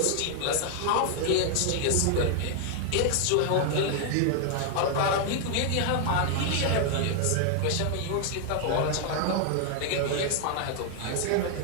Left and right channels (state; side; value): different; both; correlation 0.00